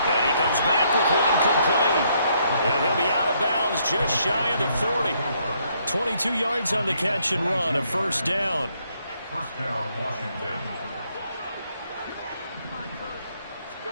And he comes back with one complete. And he'll be out of bounds just shy of the 40. 22 yards on the catch and run, a first down. First down, Washington.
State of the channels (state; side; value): inverted; both; correlation -0.71